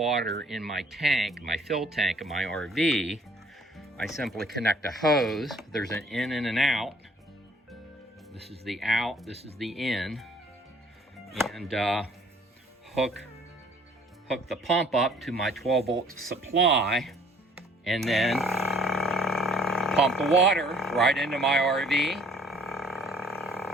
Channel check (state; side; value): normal; both; correlation 0.57